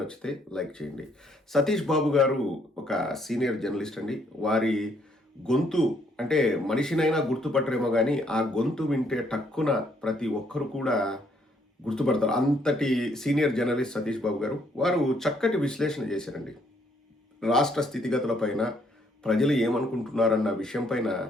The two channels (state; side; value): normal; both; correlation 0.69